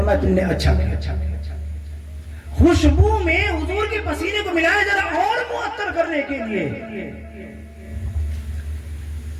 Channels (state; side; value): identical; both; correlation 1.00